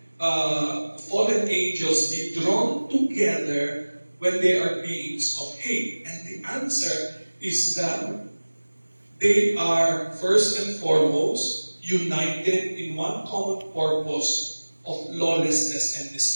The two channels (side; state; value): both; inverted; correlation -1.00